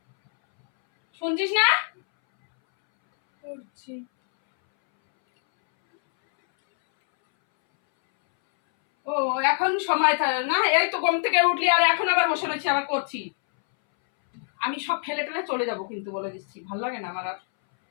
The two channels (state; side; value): silent; right; 61 dB below the other